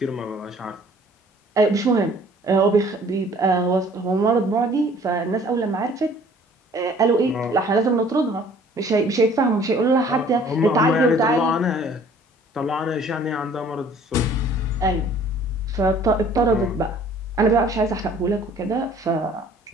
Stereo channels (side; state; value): both; normal; correlation 0.54